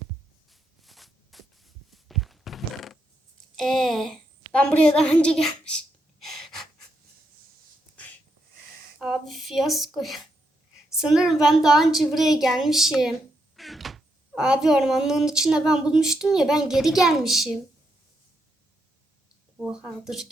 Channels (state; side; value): normal; both; correlation 0.80